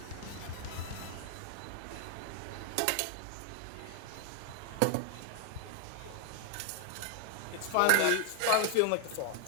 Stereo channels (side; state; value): both; different; correlation 0.00